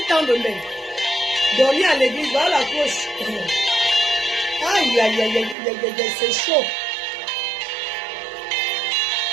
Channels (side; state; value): left; drops out; at 5.6 s